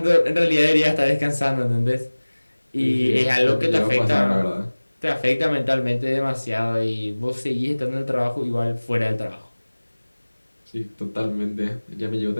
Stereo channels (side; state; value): both; inverted; correlation -1.00